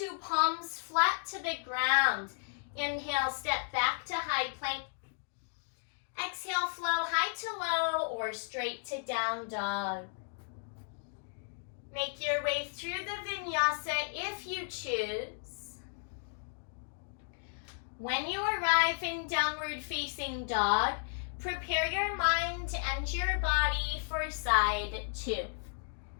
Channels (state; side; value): silent; right; digital silence